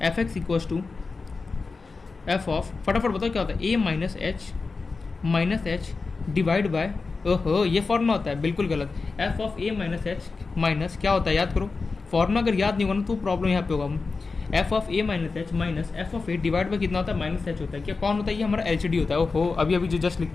F x equals to f of, फटाफट बताओ क्या होता है, a minus h divide by, ओहो ये फॉर्मूला होता है, बिल्कुल गलत, f of a minus H minus क्या होता है, याद करो फॉर्मूला अगर याद नहीं होगा ना तो प्रॉब्लम यहाँ पे होगा। F of a minus H minus F of A divide bye कितना होता है, माइनस एच होता है, क्या कौन होता है, ये हमारा एल एच डी होता है। ओहो अभी जो जस्ट लिख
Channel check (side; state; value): right; quieter; 4.2 dB